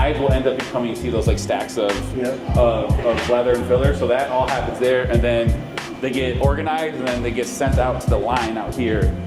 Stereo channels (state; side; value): identical; both; correlation 1.00